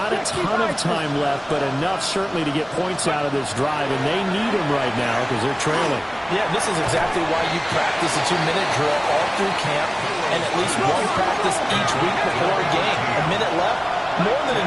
a ton of time left, but enough certainly to get points out of this drive, and they need them right now because they're trailing. Yeah, this is exactly why you practice a 2-minute drill all through camp and at least one practice each week before a game. A minute left, more than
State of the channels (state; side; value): identical; both; correlation 1.00